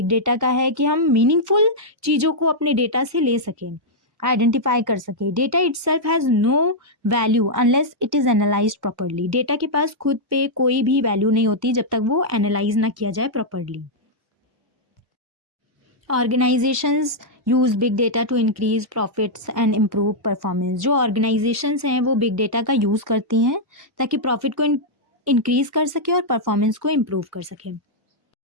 data का है कि हम मीनिंगफुल चीज़ों को अपने डेटा से ले सकें, आइडेंटिफाई कर सके. Data itself has no value unless it is analyse properly. Data के पास खुद पे कोई भी वैल्यू नहीं होती जब तक वो एनालाइज ना किया जाए properly. Organisations use big data to increase profits and improve performance. जो ऑर्गेनाइजेशंस हैं वो बिग डेटा का यूज़ करती हैं ताकि प्रॉफिट को इंक्रीज कर सके और परफॉर्मेंस को इम्प्रूव कर सके.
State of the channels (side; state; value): both; normal; correlation -0.06